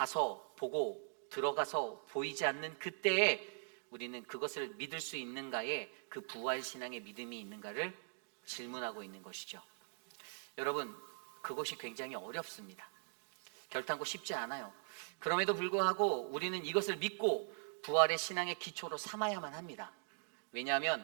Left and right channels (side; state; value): left; silent; digital silence